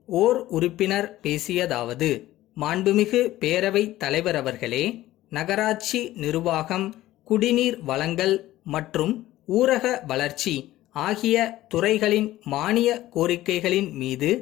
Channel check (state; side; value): quieter; right; 15.5 dB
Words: ஓர் உறுப்பினர் பேசியதாவது: மாண்புமிகு பேரவைத் தலைவர் அவர்களே, நகராட்சி நிர்வாகம், குடிநீர் வழங்கல் மற்றும் ஊரக வளர்ச்சி ஆகிய துறைகளின் மானிய கோரிக்கைகளின் மீது